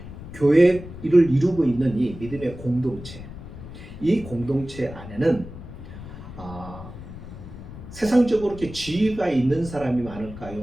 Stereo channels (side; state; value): left; noise; rumble, 13 dB below the sound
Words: 교회를 이루고 있는 이 믿음의 공동체, 이 공동체 안에는 세상적으로 이렇게 지위가 있는 사람이